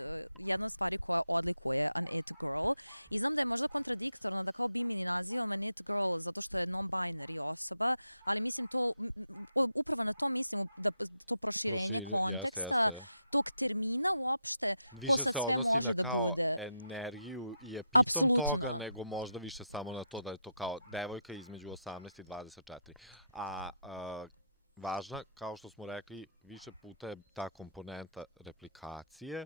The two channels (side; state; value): both; inverted; correlation -0.82